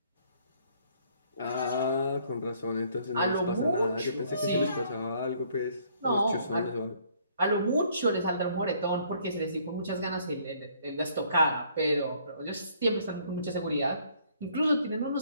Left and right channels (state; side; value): inverted; both; correlation -0.63